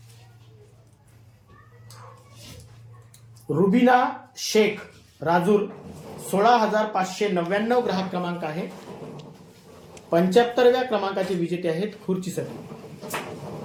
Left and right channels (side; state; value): both; identical; correlation 1.00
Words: रुबिना शेख राजूर 16,599 ग्राहक क्रमांक आहे. 75व्या क्रमांकाचे विजेते आहेत खुर्चीसाठी.